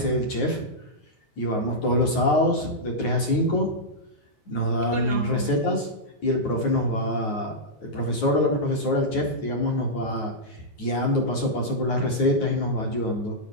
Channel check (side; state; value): right; late; 9.4 ms